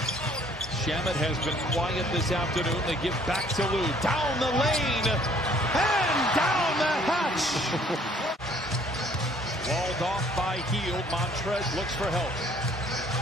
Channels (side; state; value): both; normal; correlation 0.59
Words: Shamet has been quiet this afternoon. They give back to Lou. Down the lane, and down the hatch. Walled off by Hield. Montrez looks for help.